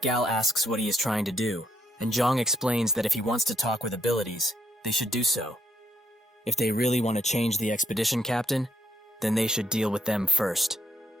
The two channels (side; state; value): both; normal; correlation 0.72